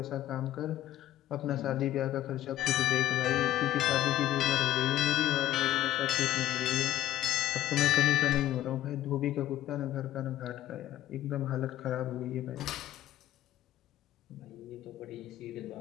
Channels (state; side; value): quieter; right; 13.5 dB